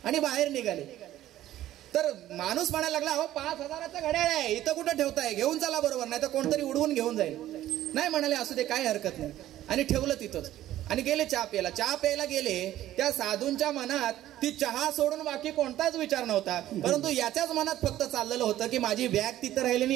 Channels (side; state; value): left; quieter; 13.5 dB